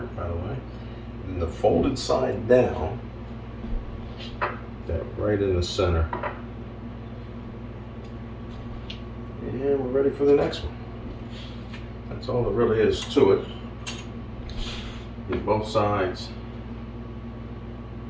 by the way. And the folded side down, that right in the center. And we're ready for the next one. That's all there really is to it. Get both sides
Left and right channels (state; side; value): identical; both; correlation 1.00